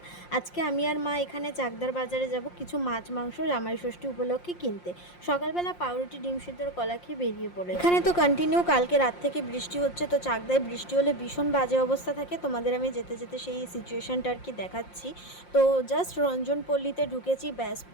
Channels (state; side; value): late; right; 5.7 ms